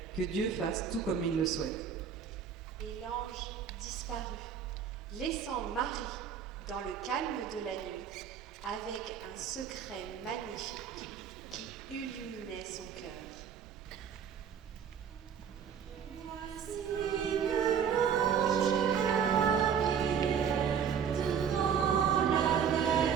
que Dieu fasse tout comme il le souhaite. » Et l'ange disparut, laissant Marie dans le calme de la nuit, avec un secret magnifique qui illuminait son cœur. Voici que l'ange Gabriel devant la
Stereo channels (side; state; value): left; quieter; 7.6 dB